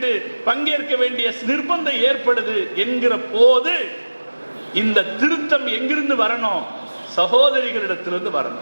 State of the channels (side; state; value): both; inverted; correlation -1.00